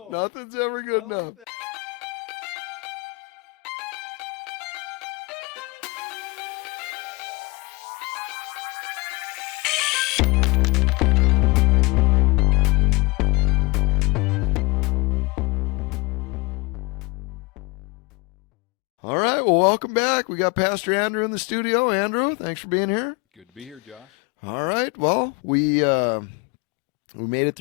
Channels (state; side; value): quieter; right; 24.6 dB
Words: Nothing's ever good I enough. like that. All right. Well, welcome back. We got Pastor Andrew in the studio. Andrew, thanks for being here. Good to be here, Josh. All right. Well, we made it